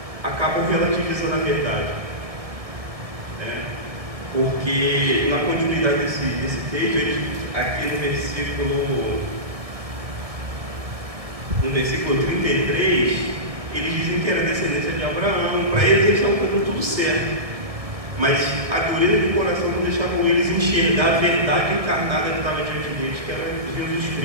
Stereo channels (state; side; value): late; left; 1.7 ms